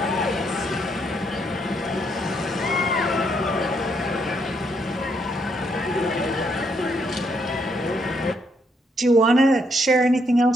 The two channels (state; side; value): normal; both; correlation 0.74